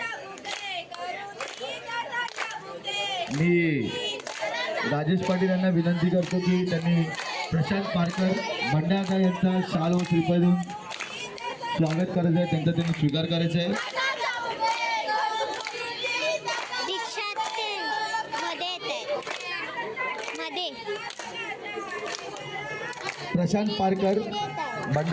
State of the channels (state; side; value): identical; both; correlation 1.00